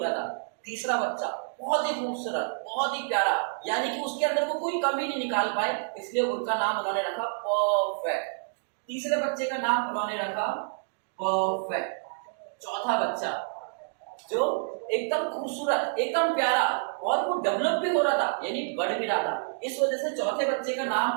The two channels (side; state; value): left; silent; digital silence